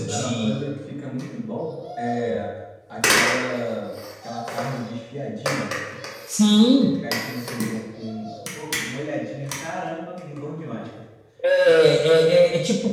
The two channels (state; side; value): identical; both; correlation 1.00